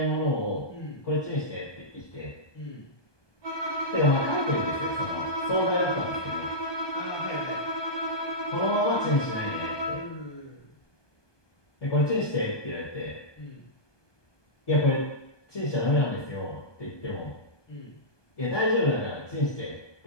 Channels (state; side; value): late; right; 1.2 ms